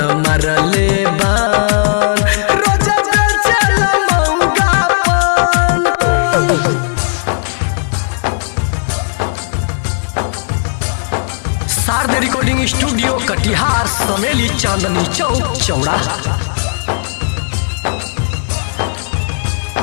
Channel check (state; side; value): silent; right; digital silence